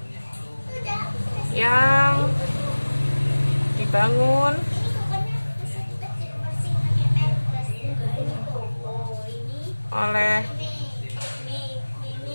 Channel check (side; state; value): both; inverted; correlation -1.00